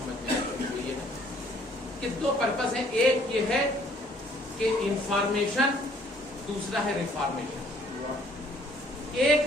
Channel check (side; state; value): both; normal; correlation 0.61